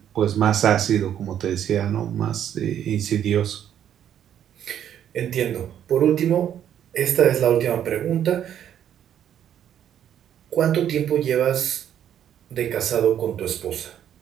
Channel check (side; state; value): left; quieter; 10.0 dB